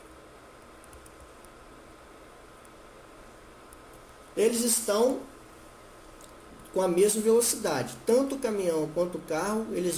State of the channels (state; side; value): identical; both; correlation 1.00